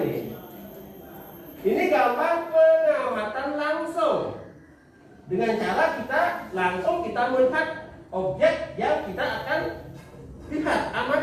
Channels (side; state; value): both; identical; correlation 1.00